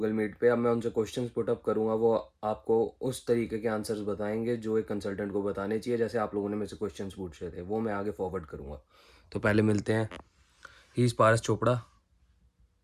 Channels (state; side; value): identical; both; correlation 1.00